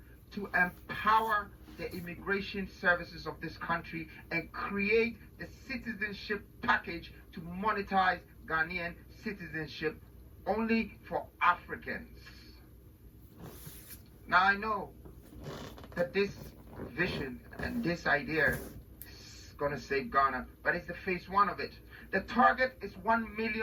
to empower the immigration services of this country and create the citizenship package to monetize Ghanaian citizenship only for Africans. Now I know that this vision and this idea is going to save Ghana, but it's the phase 1 of it. The target is 1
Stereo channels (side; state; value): both; identical; correlation 1.00